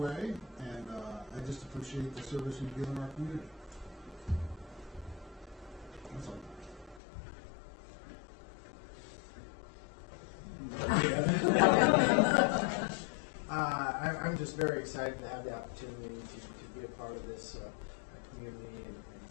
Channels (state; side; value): drops out; right; at 7.0 s